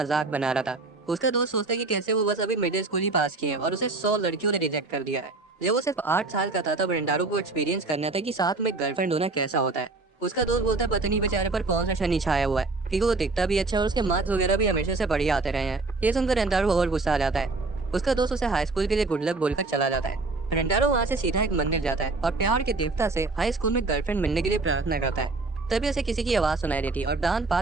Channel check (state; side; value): quieter; left; 3.5 dB